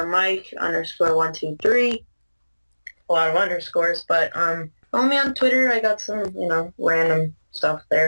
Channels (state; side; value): inverted; both; correlation -1.00